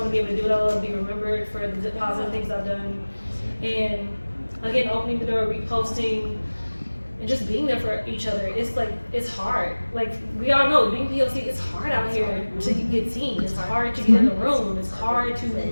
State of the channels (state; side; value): inverted; both; correlation -1.00